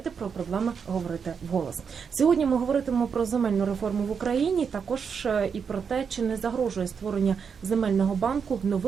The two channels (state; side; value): quieter; left; 6.4 dB